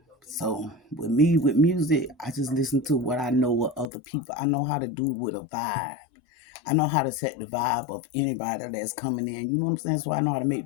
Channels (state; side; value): drops out; right; at 3.9 s